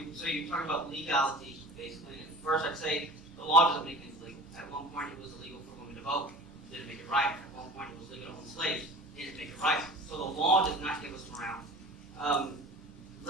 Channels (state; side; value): normal; both; correlation 0.40